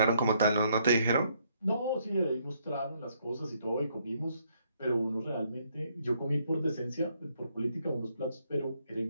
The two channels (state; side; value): inverted; both; correlation -0.71